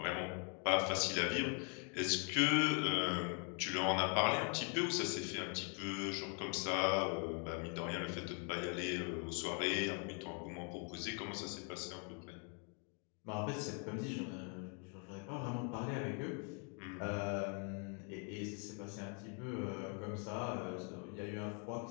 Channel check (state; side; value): quieter; right; 38.9 dB